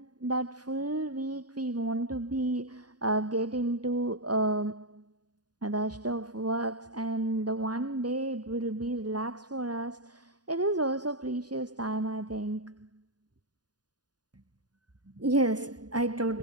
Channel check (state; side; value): late; left; 0.69 ms